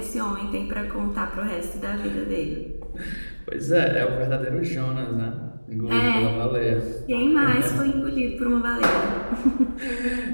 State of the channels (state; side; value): inverted; both; correlation -1.00